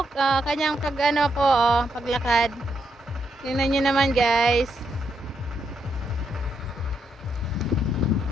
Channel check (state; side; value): normal; both; correlation 0.79